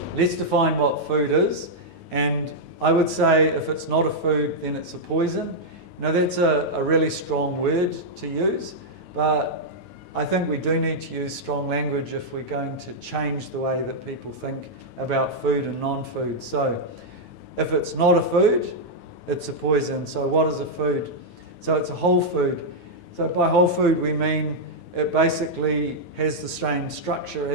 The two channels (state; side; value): late; right; 9.2 ms